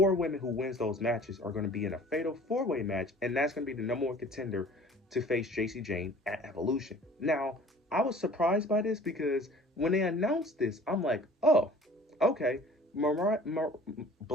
women who wins those matches are going to be in a fatal 4-way match, and that's going to be the #1 contender to face JC Jane at Evolution. Now, I was surprised by this because when they announced this, I'm like, oh, okay,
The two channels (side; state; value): both; normal; correlation 0.48